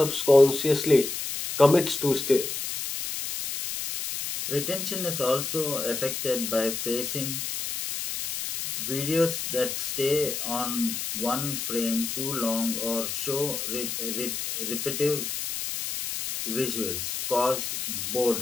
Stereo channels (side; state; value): left; noise; hiss, 4 dB below the sound